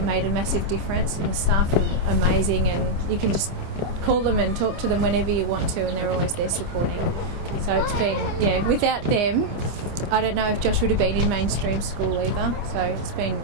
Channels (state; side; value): late; left; 26 ms